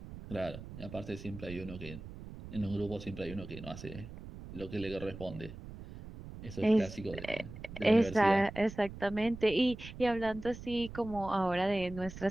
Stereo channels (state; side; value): noise; right; rumble, 13 dB below the sound